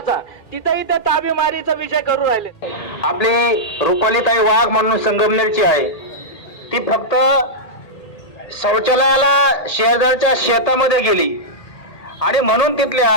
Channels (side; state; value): right; late; 1.8 ms